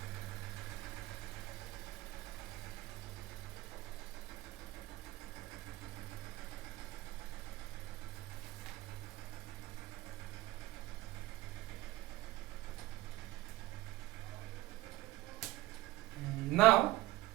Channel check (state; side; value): quieter; left; 17.4 dB